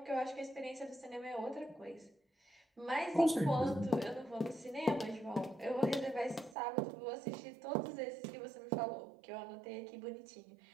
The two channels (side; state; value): left; drops out; at 6.6 s